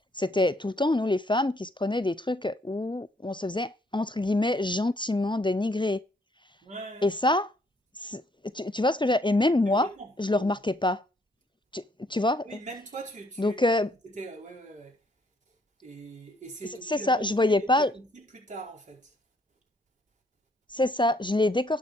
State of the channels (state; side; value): normal; both; correlation 0.67